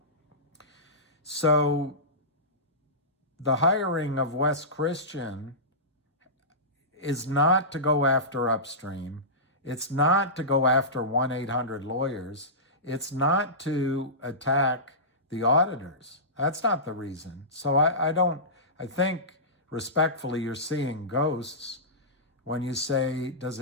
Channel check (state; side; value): normal; both; correlation -0.19